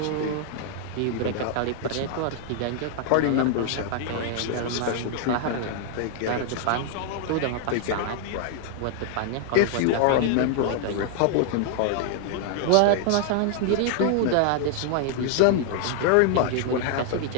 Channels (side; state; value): both; different; correlation 0.00